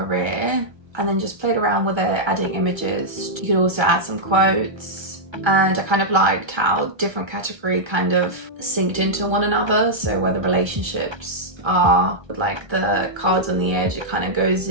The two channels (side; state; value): left; late; 1.3 ms